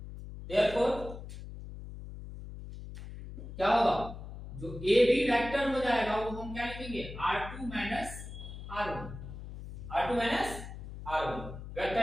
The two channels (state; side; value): noise; left; hum, 11 dB below the sound